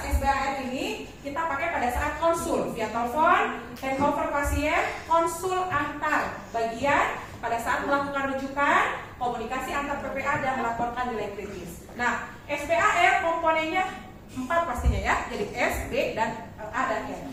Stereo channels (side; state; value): both; identical; correlation 1.00